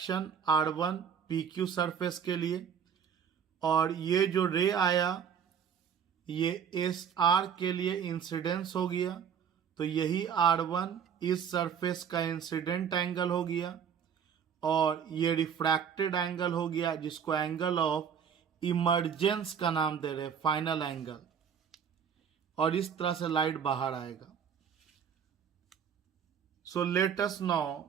R1 PQ surface के लिए और ये जो रे आया ये SR के लिए इंसिडेंस हो गया। तो यही R1 इस सरफेस का इंसिडेंट एंगल हो गया और ये रिफ्रैक्टेड एंगल हो गया जिसको एंगल ऑफ इमरजेंस का नाम दे रहे, फाइनल एंगल। और इस तरह से लाइट बाहर आएगा। So let us now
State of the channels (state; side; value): quieter; left; 7.7 dB